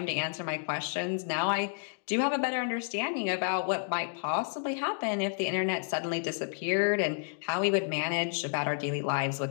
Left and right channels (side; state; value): right; silent; digital silence